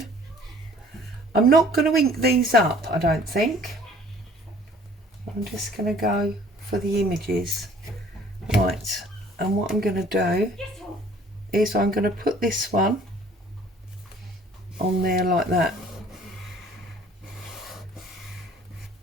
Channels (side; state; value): both; normal; correlation 0.53